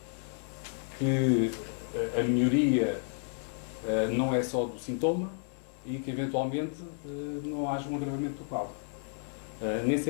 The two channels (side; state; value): right; silent; 57 dB below the other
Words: que a melhoria não é só do sintoma e que, eventualmente, não haja um agravamento do quadro. Nem